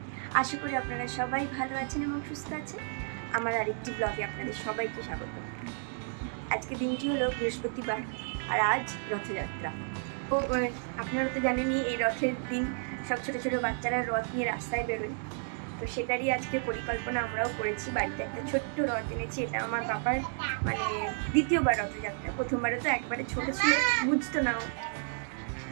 আশা করি আপনারা সবাই ভালো আছেন এবং সুস্থ আছেন। আমার আরেকটি ব্লগে আপনাদের সবাইকে স্বাগত। আজকে দিনটি হলো বৃহস্পতিবার আর আজ রথযাত্রা। তো আপনারা তো জানেনই এই রথের দিন সব ছোটো ছোটো বাচ্চারা রথ নিয়ে রাস্তায় বেরোয়। তো সেটারই আজকে পরিকল্পনা আমরাও করেছি। বাড়িতে একটা ছোট্ট রথ এনেছি। এটা আমার বাবার মানে দ্বিতীয়বার রথযাত্রা। প্রথমবারে তো একবারে ছোটো ছিল, বুঝতো না,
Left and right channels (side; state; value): left; silent; 57 dB below the other